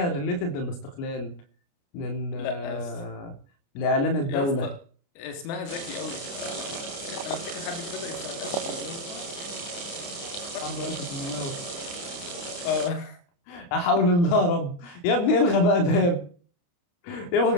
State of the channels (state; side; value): late; right; 29 ms